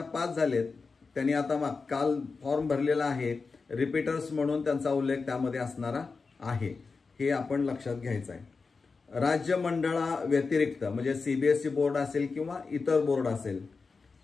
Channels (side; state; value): right; quieter; 4.5 dB